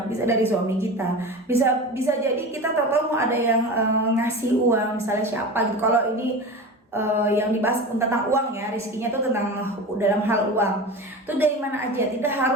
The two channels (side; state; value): both; normal; correlation 0.30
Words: bisa dari suami kita, bisa jadi kita tahu mau ada yang ngasih uang, misalnya siapa gitu. Kalau ini yang dibahas tentang uang ya, rezekinya tuh tentang dalam hal uang. Itu dari mana aja, tidak